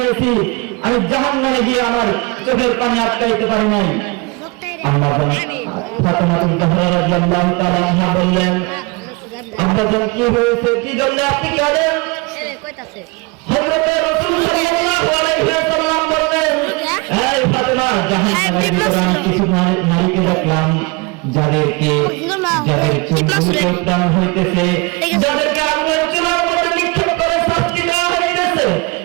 আমি জাহান্নামে গিয়ে আমার চোখের পানি আটকাইতে পারি নাই। আম্মাজান ফাতেমাতুল জাহরা রাদিয়াল্লাহু তাআলা আনহা বললেন, আম্মাজান কি হয়েছে, কি জন্য আপনি কাঁদেন? হযরত রাসূল সাল্লাল্লাহু আলাইহি ওয়াসাল্লাম বললেন, এই ফাতেমা, জাহান্নামের ভিতরে আমি কিছু নারীকে দেখলাম যাদেরকে চুলগুলো উত্তান হইতেছে, যাদেরকে আগুনের চুলার মধ্যে নিক্ষেপ করে শাস্তি দেওয়া হইতেছে।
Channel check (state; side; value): quieter; left; 27.2 dB